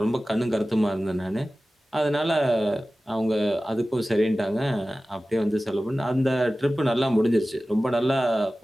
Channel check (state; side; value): normal; both; correlation 0.96